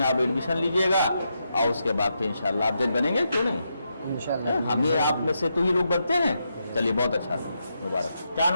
आप एडमिशन लीजिएगा, और उसके बाद फिर इंशाल्लाह आप जज बनेंगे, क्यों नहीं? इंशाल्लाह। हम ये आप में से तो ही लोग बनते हैं। चलिए बहुत अच्छा, मुबारक। क्या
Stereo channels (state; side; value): inverted; both; correlation -0.83